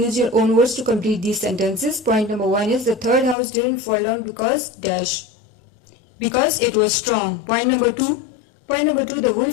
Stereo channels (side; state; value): right; drops out; at 3.4 s